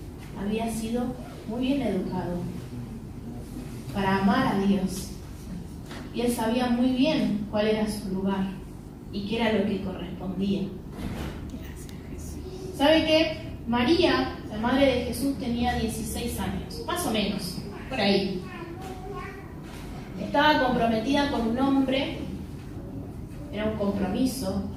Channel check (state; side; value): identical; both; correlation 1.00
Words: había sido muy bien educado para amar a Dios. Y él sabía muy bien cuál era su lugar y qué era lo que correspondía. ¿Sabe qué? María, la madre de Jesús, tenía 16 años, más o menos, por ahí. Estaba comprometida con un hombre, era un compromiso,